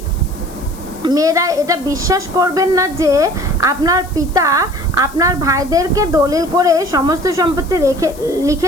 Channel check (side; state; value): left; noise; hiss, 20 dB below the sound